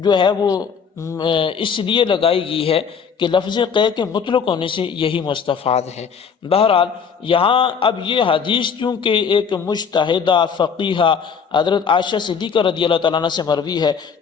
جو ہے وہ اس لیے لگائی گئی ہے کہ لفظ قے کے مطلق ہونے سے یہی مستفاد ہے۔ بہرحال یہاں اب یہ حدیث چونکہ ایک مجتہدہ فقیہہ حضرت عائشہ صدیقہ رضی اللہ تعالیٰ عنہ سے مروی ہے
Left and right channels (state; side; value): quieter; right; 6.5 dB